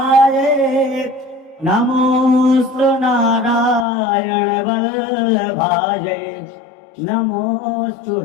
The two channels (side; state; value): right; drops out; at 3.9 s